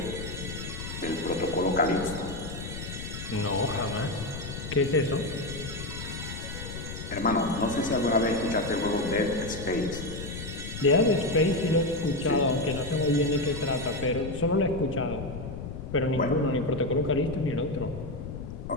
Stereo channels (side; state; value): left; noise; rumble, 8 dB below the sound